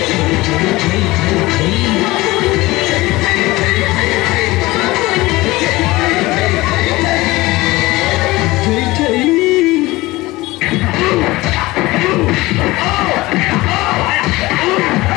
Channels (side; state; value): right; quieter; 20.1 dB